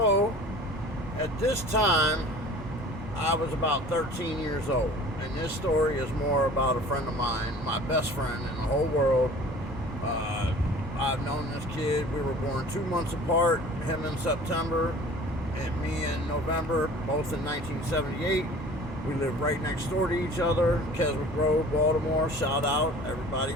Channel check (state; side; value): normal; both; correlation 0.45